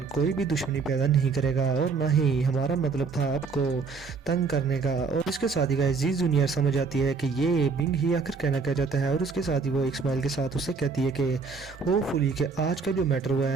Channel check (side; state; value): left; quieter; 4.8 dB